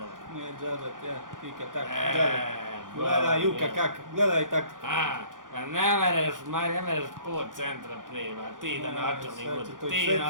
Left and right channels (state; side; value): late; left; 0.89 ms